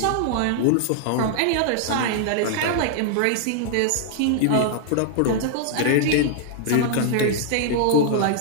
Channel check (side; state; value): both; different; correlation -0.01